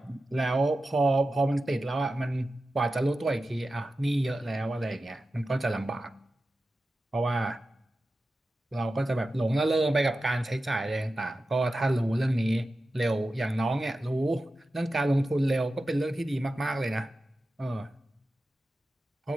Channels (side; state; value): both; normal; correlation 0.93